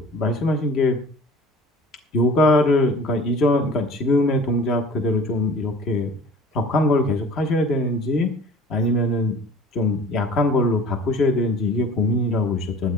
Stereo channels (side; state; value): both; normal; correlation 0.45